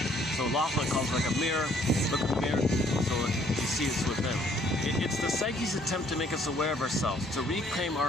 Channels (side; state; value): both; normal; correlation 0.63